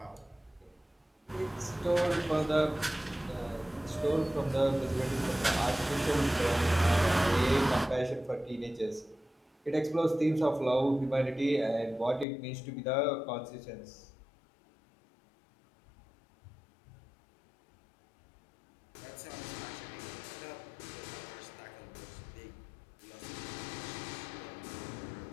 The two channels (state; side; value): drops out; right; at 12.2 s